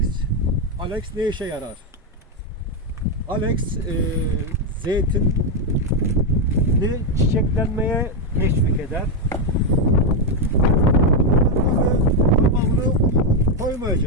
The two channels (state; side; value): normal; both; correlation 0.04